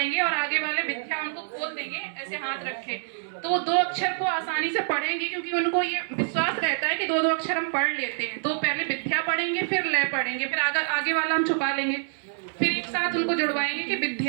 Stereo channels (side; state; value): left; silent; 61 dB below the other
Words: और आगे वाले विद्या उनको खोल देंगे, ऐसे हाथ रखे। तो वो 2 अक्षर को आसानी से पढ़ेंगे, क्योंकि उनको ये विश्वास रहता है कि 2-2 अक्षर हम पढ़ लेते हैं। तो पहले विद्या पढ़ेंगे, फिर लय पढ़ेंगे, फिर आगे वाला हम छुपा लेंगे, फिर एक साथ उनको जुड़वाएंगे कि